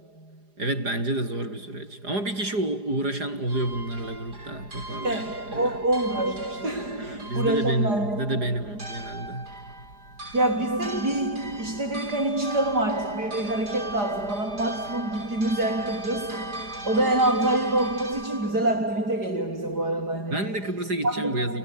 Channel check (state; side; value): late; left; 4.9 ms